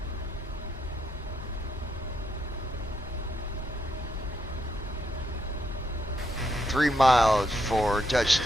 3 miles for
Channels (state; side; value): normal; both; correlation 0.78